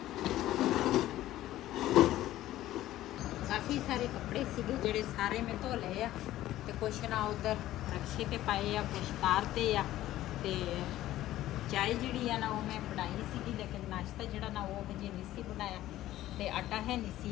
ਕਾਫੀ ਸਾਰੇ ਕੱਪੜੇ ਸੀਗੇ ਜਿਹੜੇ ਸਾਰੇ ਮੈਂ ਧੋ ਲਏ ਆ ਤੇ ਕੁਛ ਨਾ ਉਧਰ ਰਕਸ਼ੇ ਤੇ ਪਾਏ ਆ, ਕੁਛ ਤਾਰ ਤੇ ਆ। ਤੇ ਚਾਹ ਜਿਹੜੀ ਆ ਨਾ ਉਹ ਮੈਂ ਬਣਾਈ ਸੀਗੀ, ਲੇਕਿਨ ਨਾਸ਼ਤਾ ਜਿਹੜਾ ਨਾ ਉਹ ਹਜੇ ਨਹੀਂ ਸੀ ਬਣਾਇਆ ਤੇ ਆਟਾ ਹੈ ਨਹੀਂ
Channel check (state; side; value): quieter; right; 14.5 dB